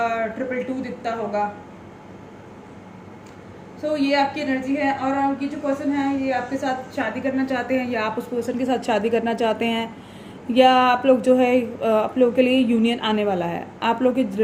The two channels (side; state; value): both; identical; correlation 1.00